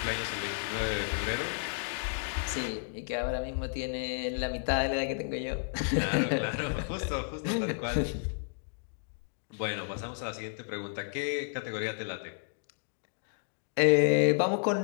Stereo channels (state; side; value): silent; right; digital silence